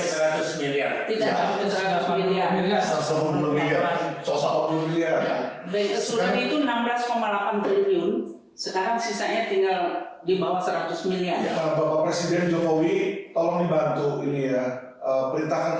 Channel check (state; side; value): identical; both; correlation 1.00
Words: miliar. Tidak sampai 100 miliar. 110 miliar. 110 miliar. Bank Assuran itu 16,8 triliun. Sekarang sisanya tinggal di bawah 100 miliar. Nah, Bapak Presiden Jokowi tolong dibantu ini ya,